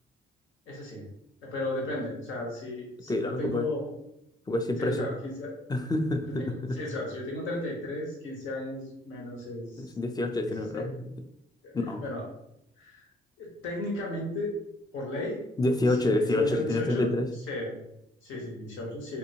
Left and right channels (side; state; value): both; normal; correlation 0.64